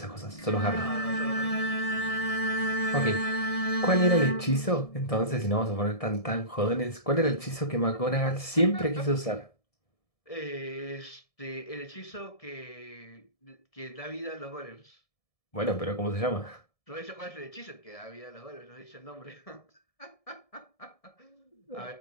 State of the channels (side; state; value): right; late; 1.7 ms